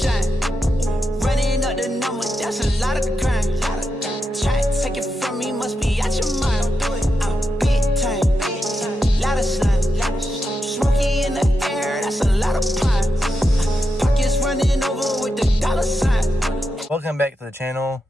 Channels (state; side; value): normal; both; correlation 0.87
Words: Running up the number, that's a lot of crime. Try to take it from me, must be out your mind. I'm big time. Lot of slime. Smoky in the air, that's a lot of pine. Pockets running over with the dollar sign. Welcome back to the channel,